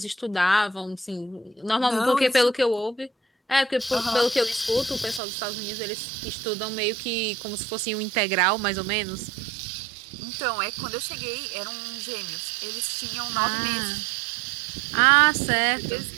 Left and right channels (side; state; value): left; drops out; at 5.2 s